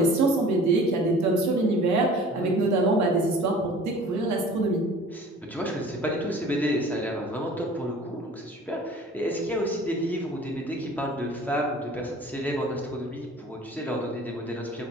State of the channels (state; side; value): normal; both; correlation 0.46